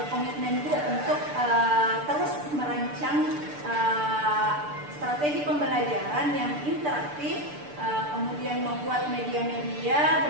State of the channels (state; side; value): late; left; 6.8 ms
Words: Bu untuk terus merancang strategi pembelajaran yang interaktif, kemudian membuat media-media